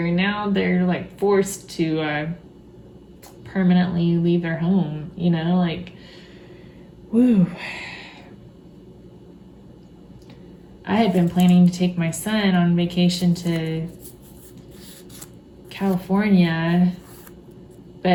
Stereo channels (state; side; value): identical; both; correlation 1.00